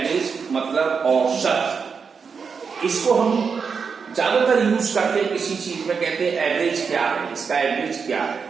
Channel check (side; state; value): left; quieter; 5.7 dB